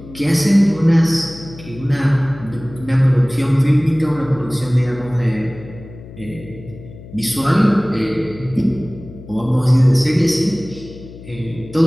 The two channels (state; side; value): noise; left; hum, 17 dB below the sound